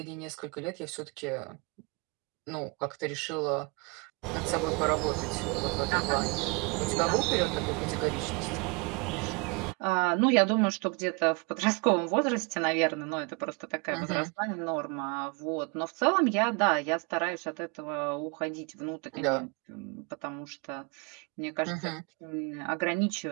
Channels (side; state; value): left; quieter; 30.7 dB